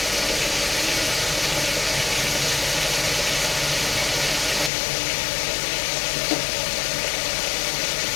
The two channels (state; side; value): drops out; right; at 4.7 s